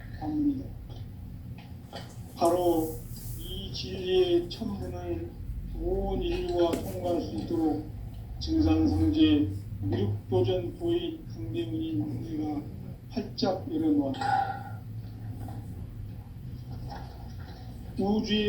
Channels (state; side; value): identical; both; correlation 1.00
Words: 관문이다. 바로 이 진리의 첫 문을 온 인류가 통과할 수 있도록 증산상제 미륵도전 도인 강대문인 내가 활짝 열어놓았다.